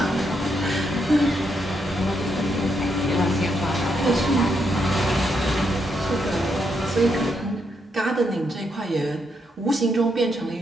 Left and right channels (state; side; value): normal; both; correlation 0.79